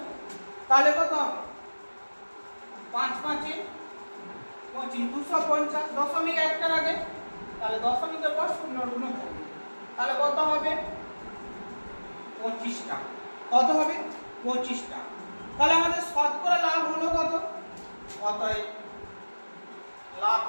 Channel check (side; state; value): both; inverted; correlation -1.00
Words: তাহলে কত 5 5 25 250 দশমিক একটার আগে তাহলে দশমিকের পর শূন্য ঋণ থাকবে তাহলে কত হবে 25 টাকা কত হবে 25 টাকা। তাহলে আমাদের শতকরা লাভ হলো কত অতএব